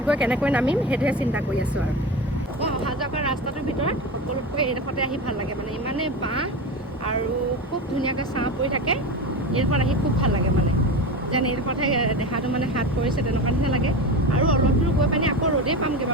গৈ কেনেকৈ নামিম সেইটোহে চিন্তা কৰি আছোঁ আৰু। মই অহা যোৱা কৰা ৰাস্তাটোৰ ভিতৰত সকলোতকৈ এইডোখৰতে আহি ভাল লাগে, মানে ইমানেই বাঁহ আৰু খুব ধুনীয়াকৈ ছাঁ পৰি থাকে। এইডোখৰত আহি খুব ভাল লাগে, মানে যেন এইডোখৰতহে দেহাটো মানে হাত পৰিছে তেনেকুৱা নিচিনা লাগে। আৰু অলপ দূৰ গৈ পানি আকৌ ৰ'দেই পামগৈ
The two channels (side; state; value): both; normal; correlation 0.25